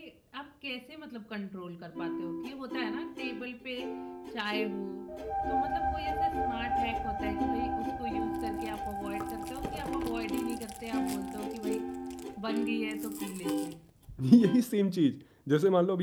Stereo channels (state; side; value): identical; both; correlation 1.00